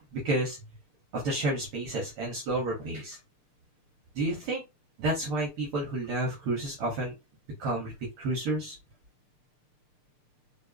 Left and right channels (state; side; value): late; left; 6.7 ms